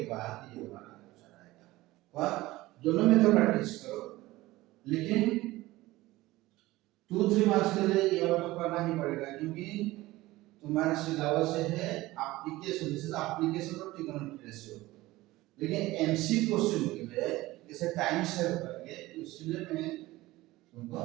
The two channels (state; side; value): quieter; left; 18.4 dB